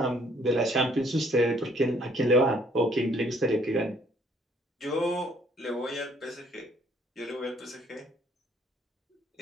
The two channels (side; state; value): both; normal; correlation 0.63